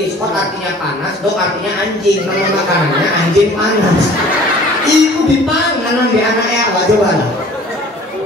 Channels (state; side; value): normal; both; correlation 0.49